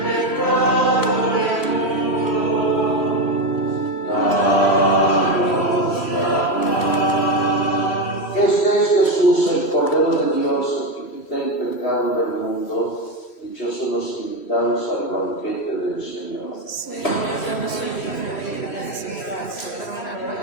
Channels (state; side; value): late; right; 3.1 ms